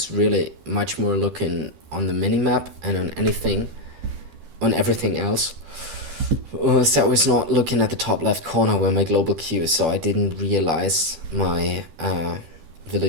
really much more looking on the minimap and on everything else. So I was not looking at the top left corner where my global queue is, so I didn't realize my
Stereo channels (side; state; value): left; late; 12 ms